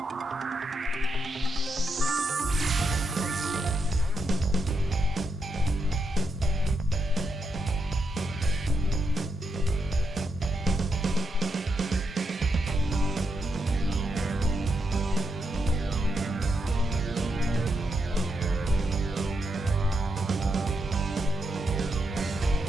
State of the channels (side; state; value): both; normal; correlation 0.82